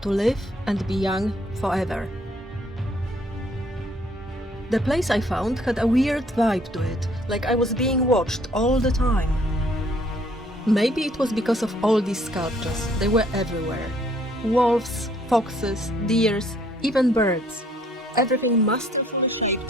live and be young forever. The place I found had a weird vibe to it, like I was being watched all the time. Maybe it was because of all these sculptures. They were everywhere. Wolves, foxes, deers, even birds. Everything masterfully shaped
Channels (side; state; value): both; normal; correlation 0.63